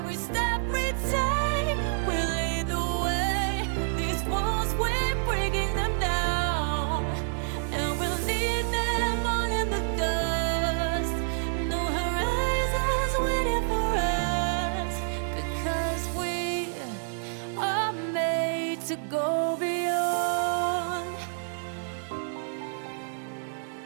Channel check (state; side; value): silent; left; digital silence